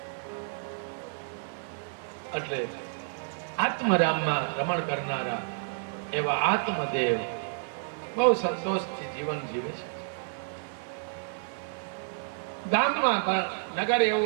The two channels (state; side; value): silent; left; 58 dB below the other